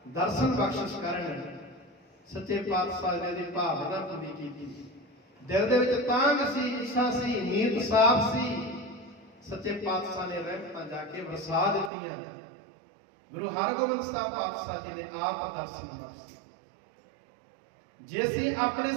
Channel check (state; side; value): drops out; left; at 11.9 s